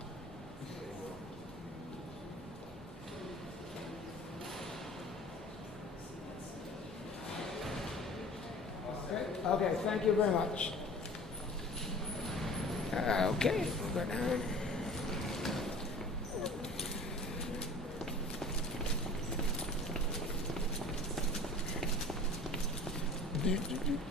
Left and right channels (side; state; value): both; normal; correlation 0.43